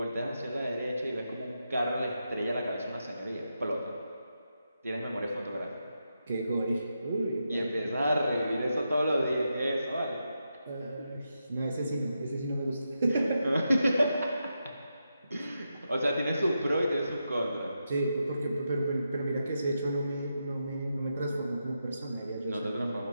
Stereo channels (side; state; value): both; inverted; correlation -0.86